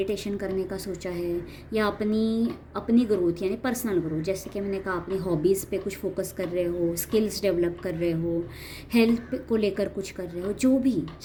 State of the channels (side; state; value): both; identical; correlation 1.00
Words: करने का सोचा है, या अपनी ग्रोथ यानी पर्सनल ग्रोथ, जैसे कि मैंने कहा अपनी हॉबीज़ पे कुछ फोकस कर रहे हो, स्किल्स डेवलप कर रहे हो, हेल्थ को लेकर कुछ कर रहे हो, जो भी